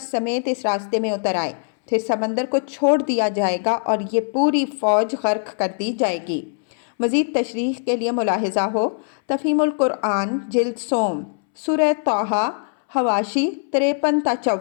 سمیت اس راستے میں اتر آئے، پھر سمندر کو چھوڑ دیا جائے گا اور یہ پوری فوج غرق کر دی جائے گی۔ مزید تشریح کے لیے ملاحظہ ہو تفہیم القرآن جلد سوم، سورہ طٰہٰ حواشی 53 تا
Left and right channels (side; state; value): right; silent; 65 dB below the other